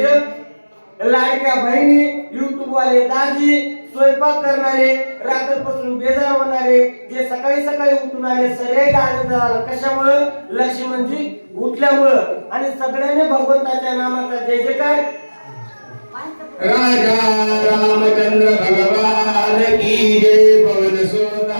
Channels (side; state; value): both; inverted; correlation -1.00